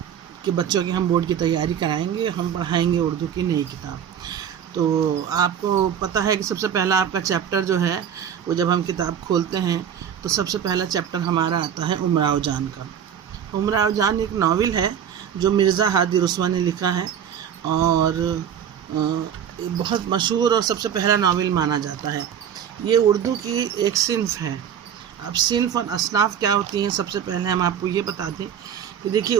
کے بچوں کے ہم بورڈ کی تیاری کرائیں گے، ہم پڑھائیں گے اردو کی نئی کتاب۔ تو آپ کو پتہ ہے کہ سب سے پہلا آپ کا چیپٹر جو ہے وہ جب ہم کتاب کھولتے ہیں تو سب سے پہلا چیپٹر ہمارا آتا ہے امراؤ جان کا۔ امراؤ جان ایک ناول ہے جو مرزا ہادی رسوا نے لکھا ہے اور بہت مشہور اور سب سے پہلا ناول مانا جاتا ہے۔ یہ اردو کی ایک صنف ہے۔ اب صنف اور اصناف کیا ہوتی ہیں، سب سے پہلے ہم آپ کو یہ بتا دیں کہ دیکھیے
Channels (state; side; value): quieter; left; 8.7 dB